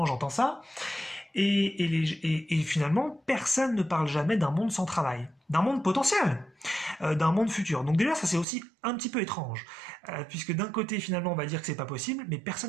j'entends ça, et finalement, personne ne parle jamais d'un monde sans travail, d'un monde potentiel, d'un monde futur. Donc déjà, ça c'est aussi un petit peu étrange, puisque d'un côté, finalement, on va dire que c'est pas possible, mais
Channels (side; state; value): left; drops out; at 8.5 s